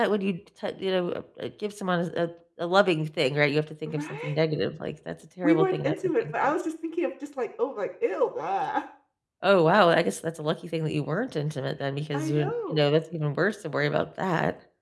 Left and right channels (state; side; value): identical; both; correlation 1.00